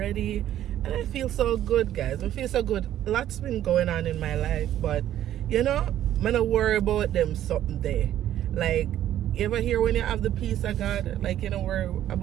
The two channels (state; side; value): quieter; left; 12.0 dB